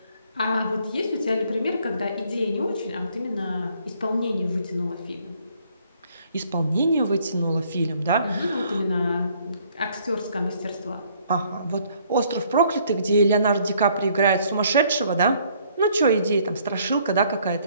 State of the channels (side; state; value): both; inverted; correlation -0.63